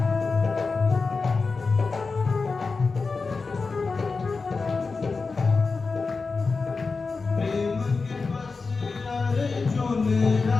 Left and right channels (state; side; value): quieter; right; 4.3 dB